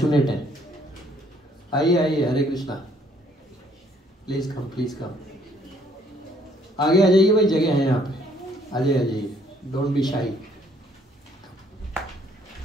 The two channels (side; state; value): both; normal; correlation 0.64